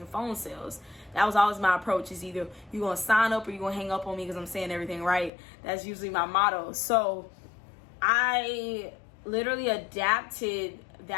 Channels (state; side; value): drops out; right; at 5.3 s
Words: phone sales. That was always my approach, is either you're going to sign up or you're going to hang up on me because I'm saying everything right. That's usually my motto. So I literally adapted